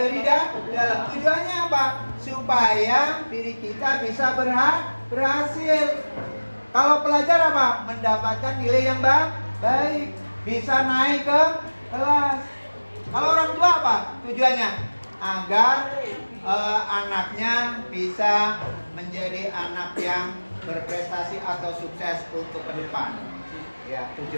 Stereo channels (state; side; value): inverted; both; correlation -1.00